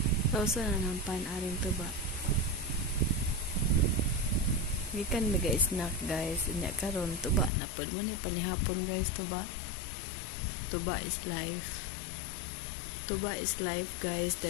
Tausa na ng pan-aring tuba. Gikan na guys, snack guys. Inya karon tuba na po. Mo ni panihapon guys, tuba. Tuba is life. Tuba is life guys.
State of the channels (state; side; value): drops out; right; at 7.5 s